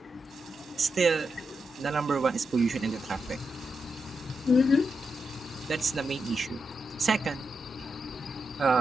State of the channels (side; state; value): both; normal; correlation 0.86